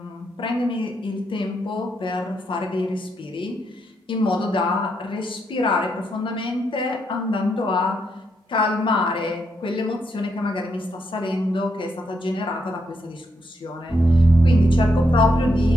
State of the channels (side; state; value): both; normal; correlation 0.79